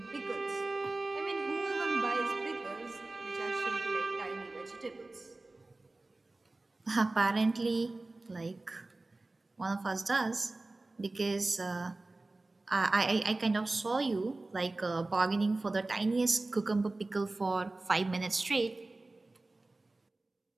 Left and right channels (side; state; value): left; quieter; 3.1 dB